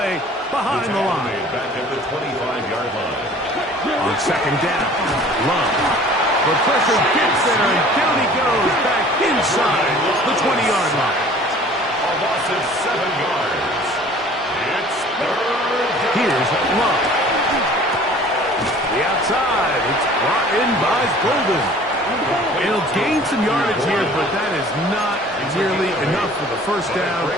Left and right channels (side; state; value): both; normal; correlation 0.49